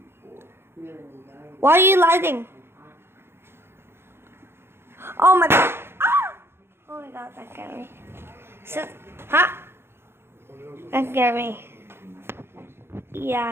Why are you lighting? Oh my god. Ah! Oh my god, that scared me. So, huh? That scared me.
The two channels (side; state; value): left; late; 0.12 ms